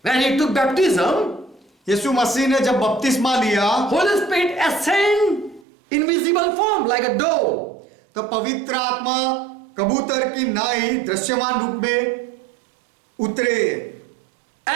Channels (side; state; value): left; drops out; at 5.7 s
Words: when he took baptism, यीशु मसीह ने जब बपतिस्मा लिया Holy Spirit ascend in visible form like a dove. तो पवित्र आत्मा कबूतर की नाई दृश्यमान रूप में उतरे।